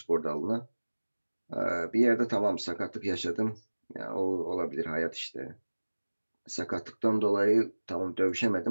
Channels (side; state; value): both; inverted; correlation -1.00